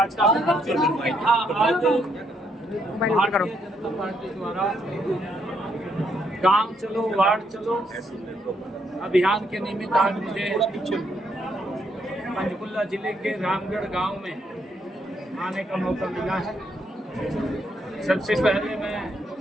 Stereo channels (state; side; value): normal; both; correlation 0.74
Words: Mobile ऊपर करो। जनता पार्टी द्वारा गांव चलो वार्ड चलो अभियान के निमित्त आज मुझे पंचकुला जिले के रामगढ़ गांव में आने का मौका मिला है। सबसे पहले मैं